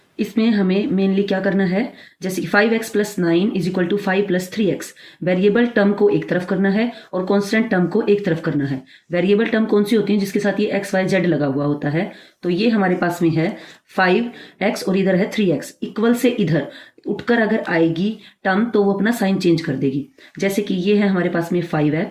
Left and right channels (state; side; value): identical; both; correlation 1.00